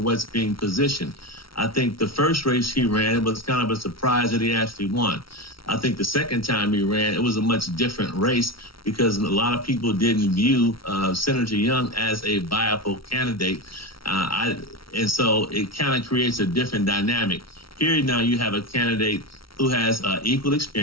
being positioned. I think the first race he ran was kind of a surprise that he actually won. I think the second time he ran, it was a much different race because a lot of people didn't view Senator Young as a viable candidate. And so it kind of creates a different dynamic. Here now you have a candidate who has equal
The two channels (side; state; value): right; late; 0.74 ms